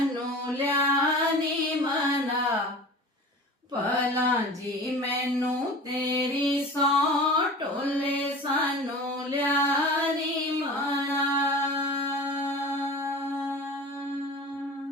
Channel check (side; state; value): both; normal; correlation 0.37